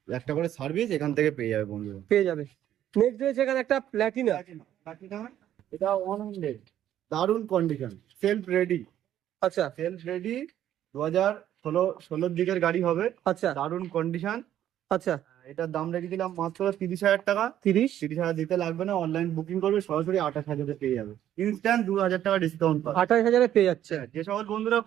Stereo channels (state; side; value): quieter; left; 11.5 dB